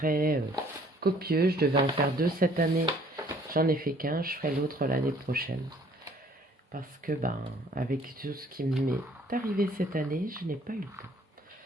copieux. Je devais en faire 2 cette année. J'en ai fait qu'un. Je ferai l'autre l'année prochaine. Parce que, avec tout ce qui m'est arrivé cette année, je n'ai pas eu le temps.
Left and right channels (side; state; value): both; normal; correlation 0.58